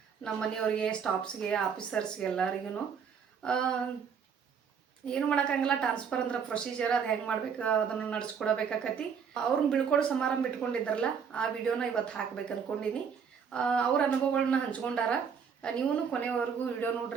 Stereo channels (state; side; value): quieter; left; 6.8 dB